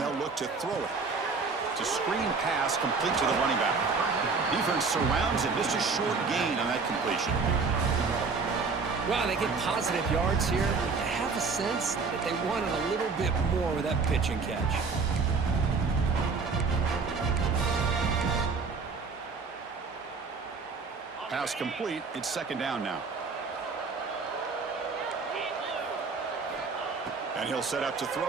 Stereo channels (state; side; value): quieter; left; 4.6 dB